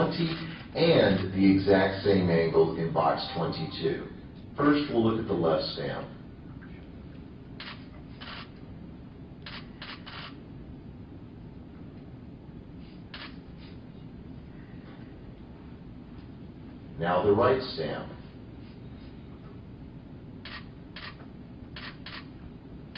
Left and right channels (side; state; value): both; identical; correlation 1.00